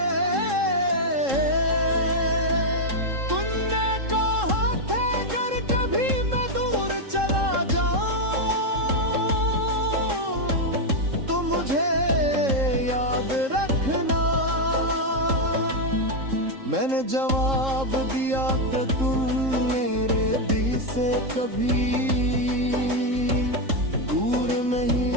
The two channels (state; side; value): late; left; 3.7 ms